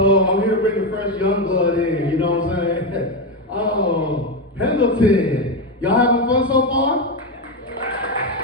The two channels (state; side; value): normal; both; correlation 0.10